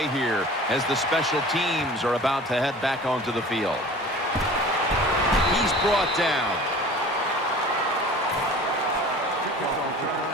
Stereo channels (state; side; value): normal; both; correlation 0.42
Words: here as the special teams are about to head back onto the field. He's brought down.